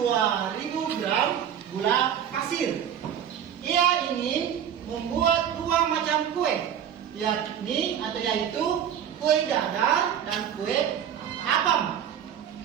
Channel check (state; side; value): quieter; left; 9.2 dB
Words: gram gula pasir. Ia ingin membuat 2 macam kue, yaitu kue dadar dan kue apam.